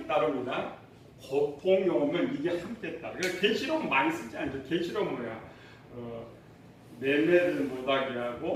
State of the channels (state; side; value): identical; both; correlation 1.00